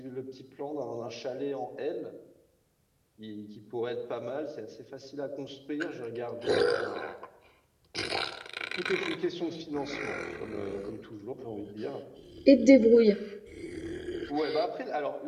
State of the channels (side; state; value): both; identical; correlation 1.00